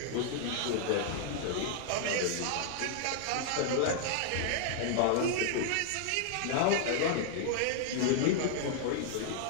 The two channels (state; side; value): different; both; correlation -0.01